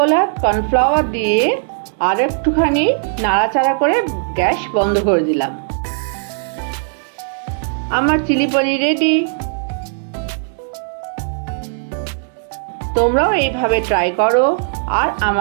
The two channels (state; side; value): silent; left; digital silence